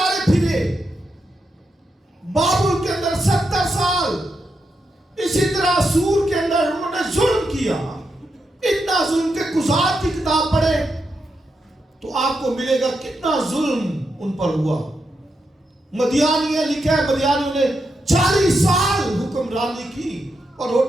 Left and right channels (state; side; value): normal; both; correlation 0.84